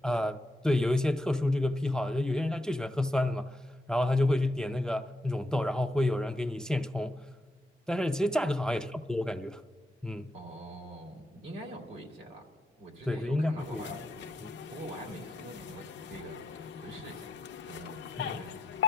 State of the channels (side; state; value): both; normal; correlation 0.85